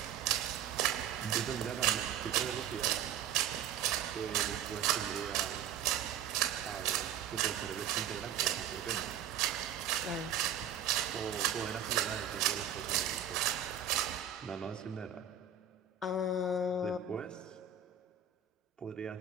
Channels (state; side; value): quieter; left; 8.1 dB